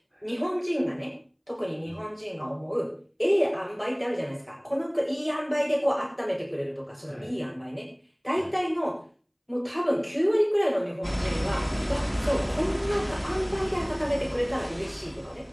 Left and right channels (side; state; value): both; identical; correlation 1.00